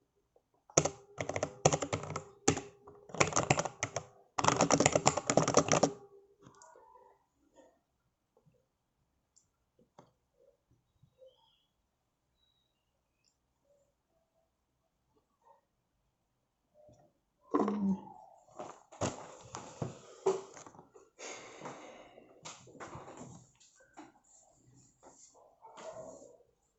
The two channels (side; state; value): both; identical; correlation 1.00